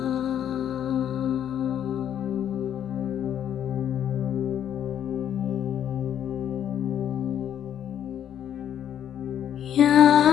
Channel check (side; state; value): right; quieter; 9.9 dB